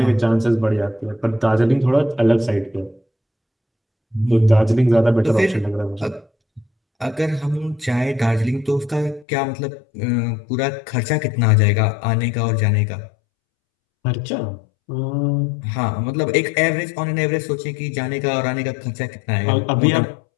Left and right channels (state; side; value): drops out; right; at 9.2 s